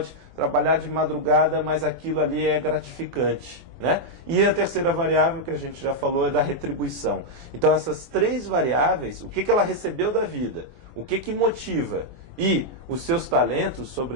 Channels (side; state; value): left; late; 22 ms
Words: trabalhar de madrugada, mas aquilo ali é gratificante, né? E a terceira variável que a gente já falou é da retribuição. Então essas três variáveis, o que ela recebeu da vida, o que motiva e os seus talentos,